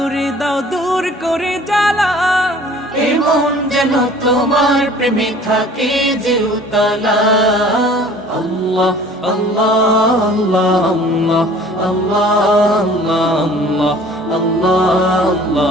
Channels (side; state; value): both; normal; correlation 0.49